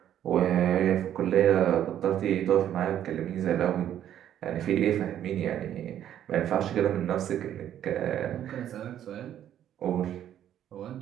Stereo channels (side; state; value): left; quieter; 10.8 dB